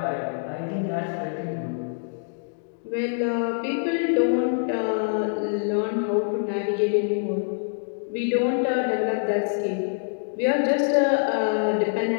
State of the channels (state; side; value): silent; right; digital silence